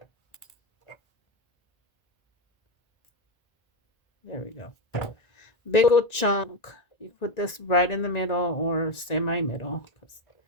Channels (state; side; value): late; right; 1.9 ms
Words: There we go. Big old chunk. You put this right in the middle or semi-middle.